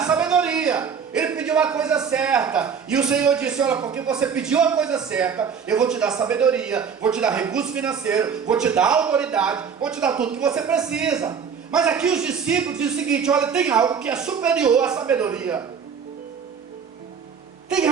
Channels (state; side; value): quieter; left; 6.7 dB